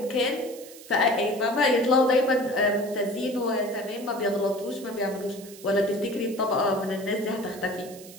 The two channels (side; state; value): right; noise; hiss, 18 dB below the sound